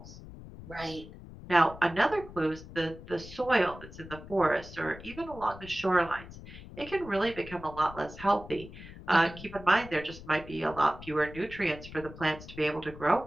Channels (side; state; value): left; noise; rumble, 15 dB below the sound